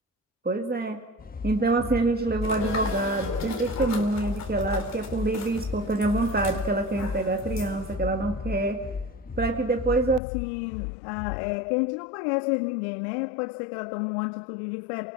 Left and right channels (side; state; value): right; drops out; at 10.2 s